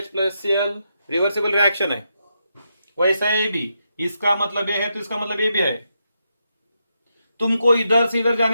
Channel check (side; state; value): both; inverted; correlation -0.83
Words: plus Cl, reversible reaction है। वैसा ये भी, इसका मतलब ये है तो इसका मतलब ये भी है। तुमको इधर से इधर